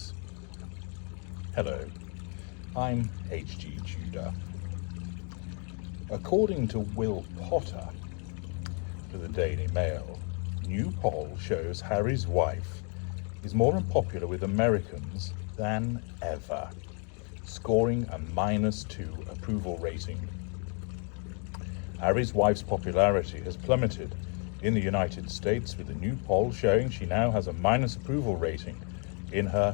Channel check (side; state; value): right; quieter; 39.5 dB